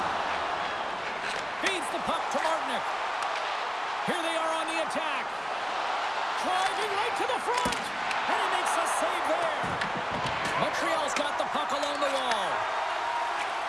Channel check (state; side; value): identical; both; correlation 1.00